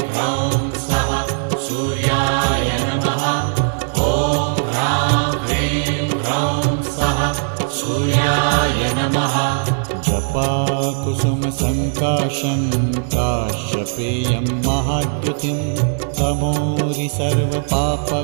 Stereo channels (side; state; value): left; silent; digital silence